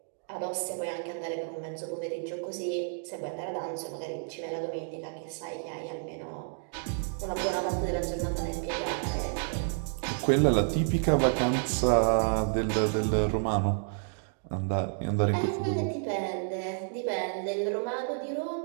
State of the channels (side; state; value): left; silent; digital silence